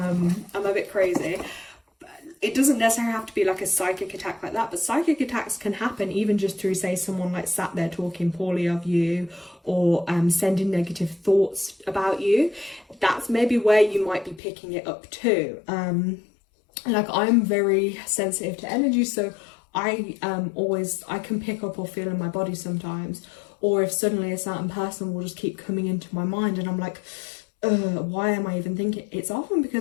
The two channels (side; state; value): right; drops out; at 14.4 s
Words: a bit crazy. it doesn't necessarily have to be like a psychic attack like that, but psychic attacks can happen even just through, say, someone like sat there talking poorly of you, or sending negative thoughts about you. That's maybe where you might be picking it up too. Like, I'm very sensitive to energy, so I can pick up or feel in my body sometimes, or if suddenly a certain person will just keep coming into my mind and I'm like, why am I even thinking? It's often